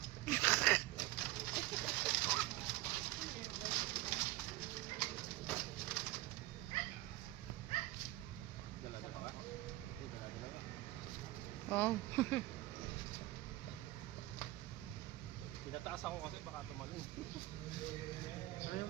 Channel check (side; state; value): left; quieter; 17.8 dB